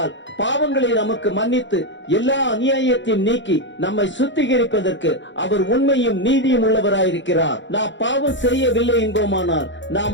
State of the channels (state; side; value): late; right; 0.54 ms